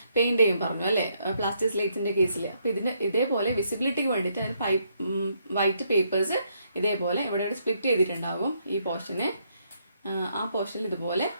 പെയിന്റ് ചെയ്യും പറഞ്ഞു അല്ലേ പ്ലാസ്റ്റിക് സ്ലേറ്റ്സിന്റെ കേസിൽ. അപ്പോൾ ഇതേപോലെ വിസിബിലിറ്റിക്ക് വേണ്ടിയിട്ട് അതിന് വൈറ്റ് പേപ്പേഴ്സ് ഇതേപോലെ ഇവിടെ സ്പ്ലിറ്റ് ചെയ്തിട്ടുണ്ടാകും. ഈ പോർഷന് ആ പോർഷനിൽ ഇതുപോലെ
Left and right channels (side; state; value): both; inverted; correlation -0.74